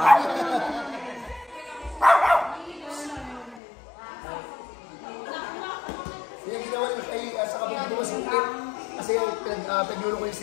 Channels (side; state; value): right; drops out; at 3.6 s